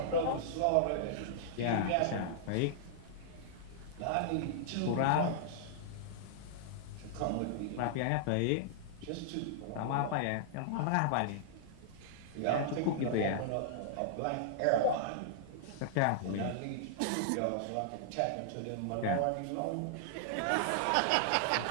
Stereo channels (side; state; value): both; different; correlation -0.01